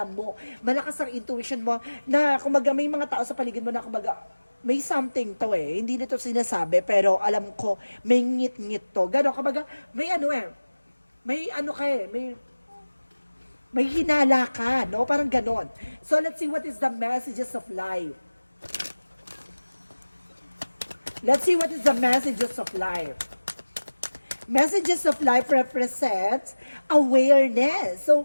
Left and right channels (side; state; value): both; inverted; correlation -1.00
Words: mo, malakas ang intuition mo, na kumbaga may mga tao sa paligid mo na kumbaga, may something to eh, hindi nito sinasabi, pero alam ko, may ngit-ngit to. Gano'n, kumbaga, may ano eh, may ano ka eh, may hinala ka, no? Parang gano'n. So, let's see what is the messages of life. Let's see what is the messages of life. Messages of life represents awareness. So,